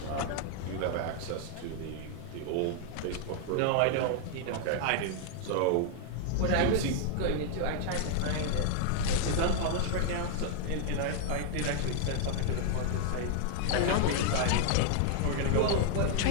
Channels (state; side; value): different; both; correlation 0.00